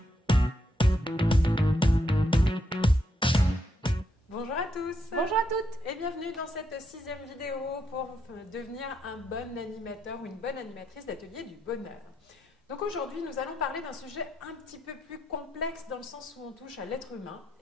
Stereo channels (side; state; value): both; normal; correlation 0.78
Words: à tous. Bonjour à toutes. Et bienvenue dans cette 6e vidéo pour devenir un bon animateur ou une bonne animatrice d'atelier du bonheur. Donc aujourd'hui, nous allons parler d'un sujet un petit peu plus complexe dans le sens où on touche à l'être humain